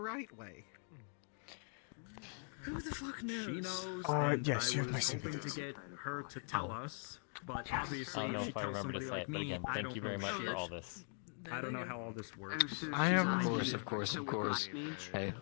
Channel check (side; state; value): right; silent; 50 dB below the other